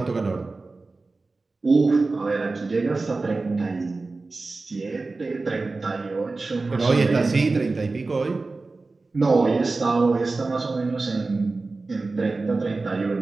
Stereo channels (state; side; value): quieter; left; 3.6 dB